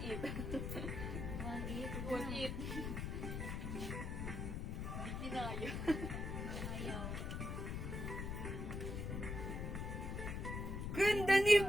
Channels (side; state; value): left; noise; rumble, 3 dB below the sound